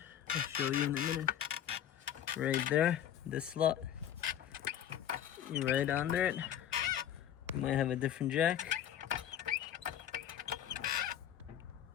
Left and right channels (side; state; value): right; quieter; 10.3 dB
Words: I'll show you in a minute. Right there, this slot. You're right under it. You might have a different jack.